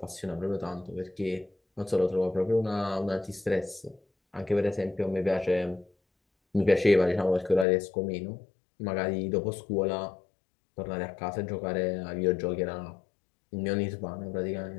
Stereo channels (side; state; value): right; drops out; at 7.7 s